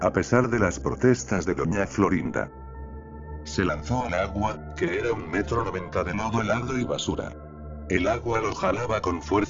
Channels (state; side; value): identical; both; correlation 1.00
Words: pesar de las protestas de Doña Florinda. se lanzó al agua, que era 1,90 m de lodo helado y basura. El agua lo jalaba con